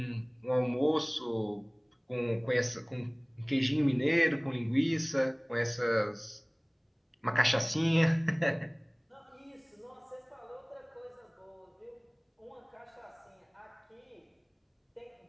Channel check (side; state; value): both; identical; correlation 1.00